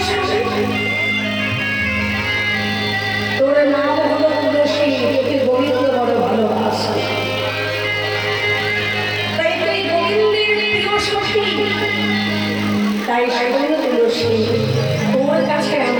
শুনি। তোর নাম হলো তুলসী, তোকে গোবিন্দ বড় ভালোবাসে। তাই তুই গোবিন্দের প্রিয় সখী, তাই শোন তুলসী, তোর কাছে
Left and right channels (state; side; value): noise; right; hum, 29 dB below the sound